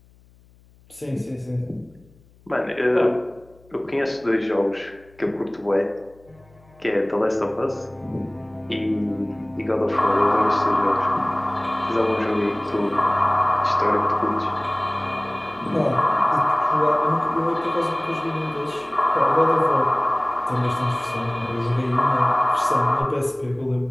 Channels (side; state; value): left; noise; hum, 29 dB below the sound